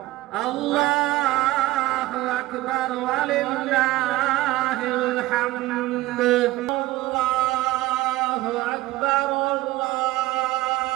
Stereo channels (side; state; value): left; quieter; 17.4 dB